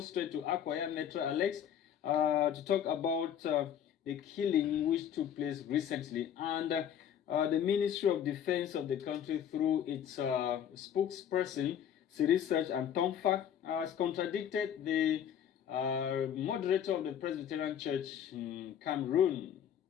to Akwaya, Metro Alex, to talk about the killing which took place recently. And the Ministry of Defense of the country, through its spokesperson, Research and Tomfak, has contradicted the moderator of the Presbyterian Church in Cameroon.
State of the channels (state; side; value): quieter; right; 9.3 dB